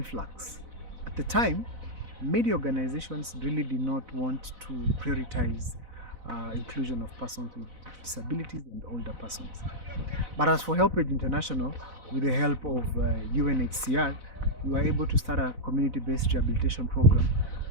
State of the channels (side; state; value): left; late; 4.0 ms